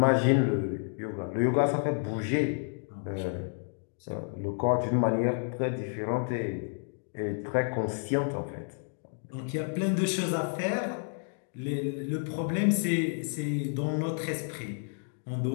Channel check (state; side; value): silent; right; 58 dB below the other